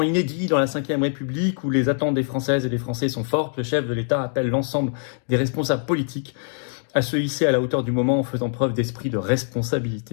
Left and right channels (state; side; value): silent; right; digital silence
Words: inédits dans la Ve République où les attentes des Françaises et des Français sont fortes, le chef de l'État appelle l'ensemble des responsables politiques à se hisser à la hauteur du moment en faisant preuve d'esprit de